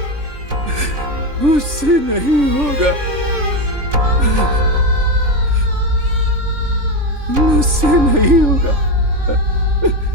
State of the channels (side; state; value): left; late; 3.4 ms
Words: मुझसे नहीं होगा, मुझसे नहीं होगा।